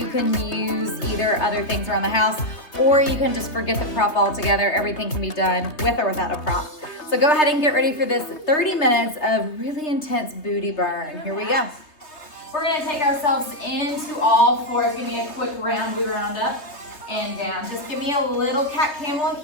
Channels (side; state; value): right; late; 3.3 ms